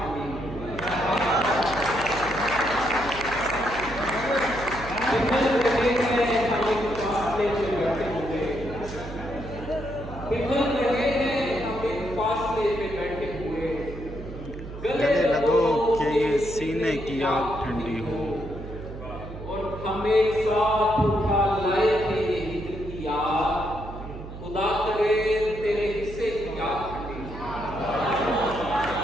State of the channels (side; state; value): right; noise; hum, 11 dB below the sound